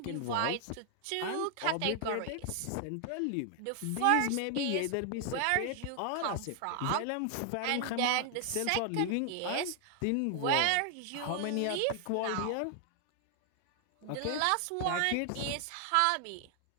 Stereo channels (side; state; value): both; different; correlation 0.00